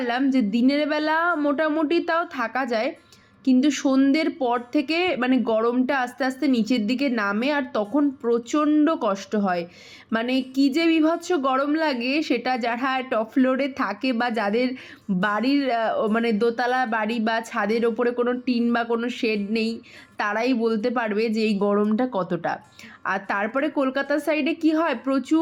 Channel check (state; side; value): identical; both; correlation 1.00